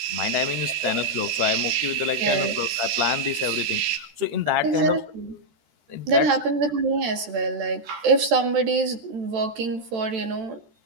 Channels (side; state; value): left; late; 14 ms